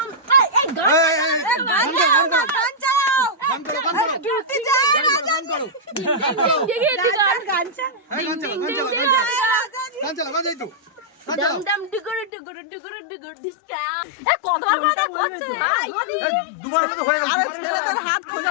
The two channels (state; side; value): drops out; right; at 12.3 s